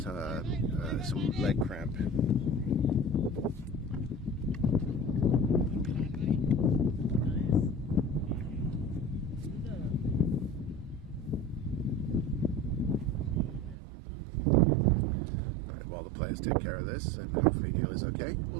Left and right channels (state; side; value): drops out; left; at 13.8 s